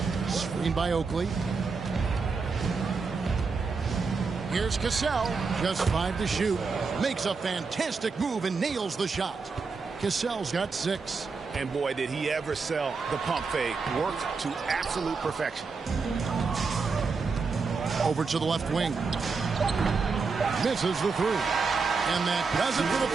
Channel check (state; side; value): quieter; left; 4.7 dB